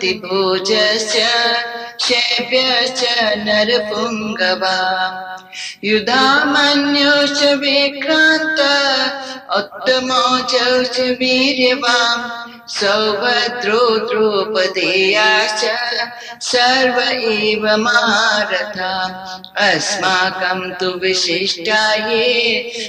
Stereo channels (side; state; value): both; identical; correlation 1.00